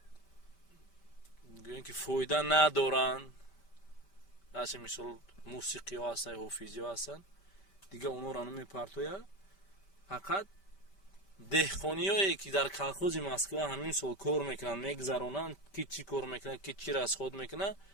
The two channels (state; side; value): late; right; 5.1 ms